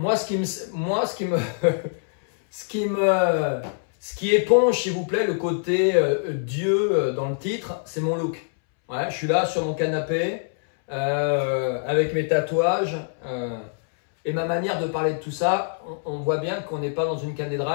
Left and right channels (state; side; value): silent; right; 62 dB below the other